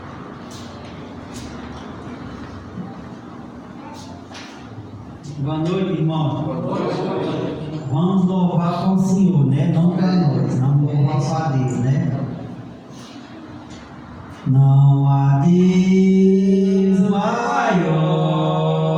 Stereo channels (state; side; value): identical; both; correlation 1.00